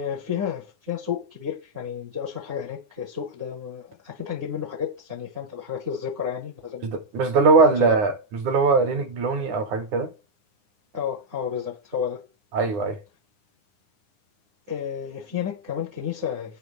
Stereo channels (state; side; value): late; left; 9.7 ms